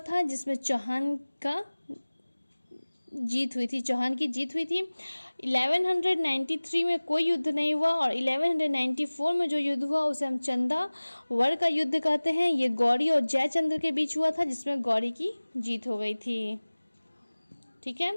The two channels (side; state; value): both; inverted; correlation -1.00